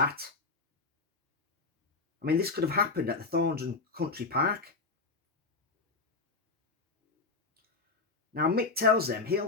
I mean, this could have happened at the Thorndon Country Park. Now, Mick tells them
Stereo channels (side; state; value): right; quieter; 4.0 dB